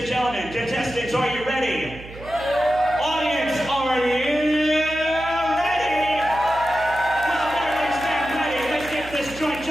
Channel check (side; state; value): right; noise; hum, 15 dB below the sound